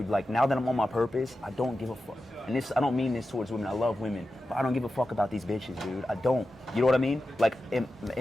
like now that I'm on my purpose, I don't give a fuck. And I don't mean this towards women. I love women, but I don't give a fuck about these bitches, dude. I don't. You know what I mean? Like in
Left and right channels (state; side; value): normal; both; correlation 0.92